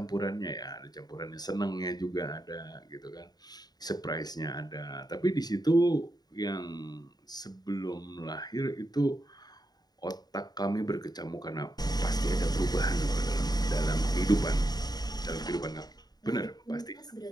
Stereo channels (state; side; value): late; right; 0.19 ms